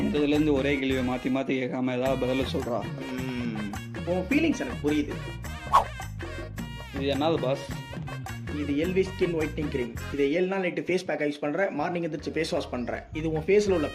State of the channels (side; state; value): both; identical; correlation 1.00